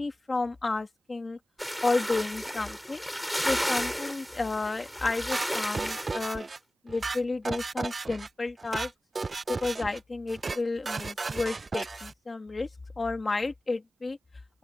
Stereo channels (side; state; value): both; normal; correlation 0.96